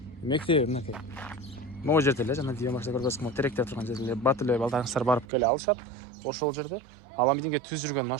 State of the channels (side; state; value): left; drops out; at 5.2 s